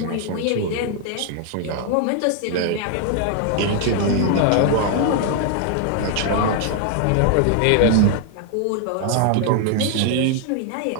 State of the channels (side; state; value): both; different; correlation 0.00